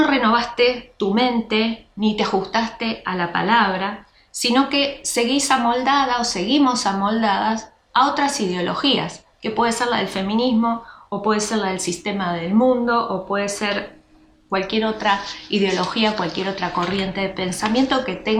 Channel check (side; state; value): both; identical; correlation 1.00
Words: renovaste tu mente ni te ajustaste a la palabra, sino que seguís amoldada o seguimos amoldadas a otras ideologías, que puede ser la del feminismo, o puede ser la del sistema del mundo, o puede ser cualquier otra ideología, cualquier otra corriente de pensamiento que